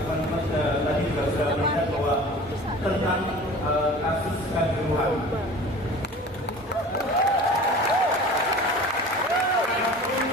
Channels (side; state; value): both; normal; correlation 0.41